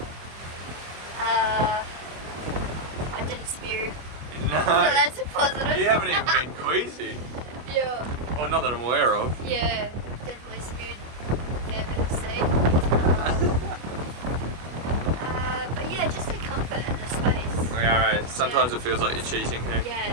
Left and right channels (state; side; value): late; left; 25 ms